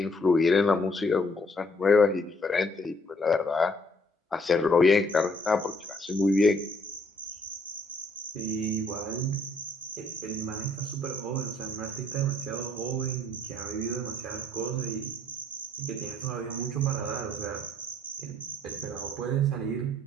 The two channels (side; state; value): both; normal; correlation 0.65